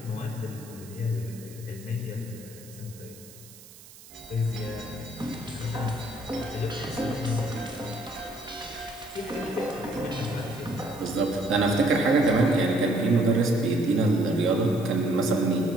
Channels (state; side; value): noise; right; hiss, 20 dB below the sound